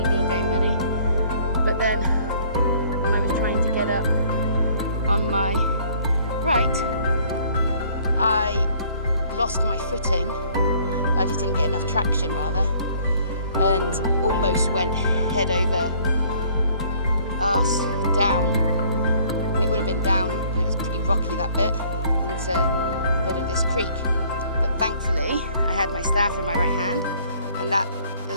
being very muddy. But then when I was trying to get up on my right, I lost my footing. I just didn't get enough traction rather, and almost went head over arse down, and it would have been down, and it was pretty rocky that bit, into a bit of this creek. But thankfully I had my staff in my right hand, and that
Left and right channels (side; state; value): both; inverted; correlation -0.59